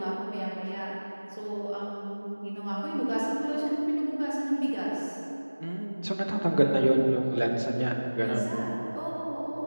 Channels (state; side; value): inverted; both; correlation -1.00